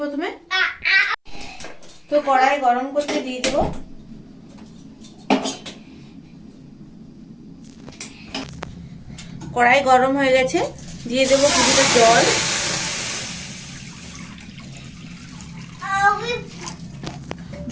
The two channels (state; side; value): identical; both; correlation 1.00